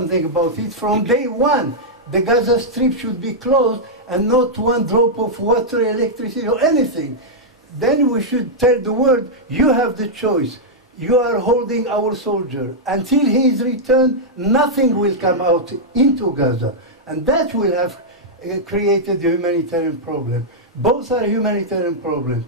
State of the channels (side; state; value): both; normal; correlation -0.07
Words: about it from day one, the Gaza Strip should be closed and not one drop of water, electricity, or anything. Then we should tell the world, you have the choice. You are holding our soldier. Until he is returned, nothing will come out into Gaza. And that will have created the humanitarian problem. Both are humanitarian problems.